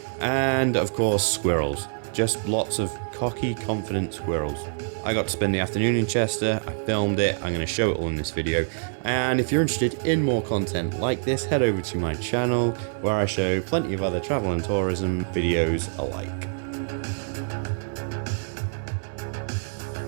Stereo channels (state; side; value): silent; left; 61 dB below the other